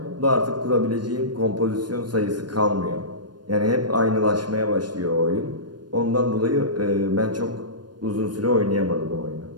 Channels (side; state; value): left; late; 0.70 ms